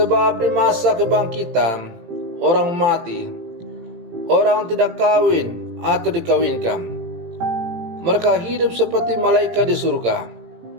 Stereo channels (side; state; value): left; late; 18 ms